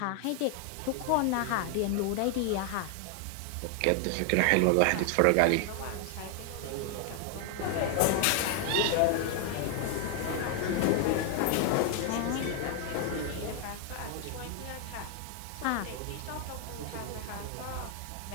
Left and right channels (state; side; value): different; both; correlation 0.00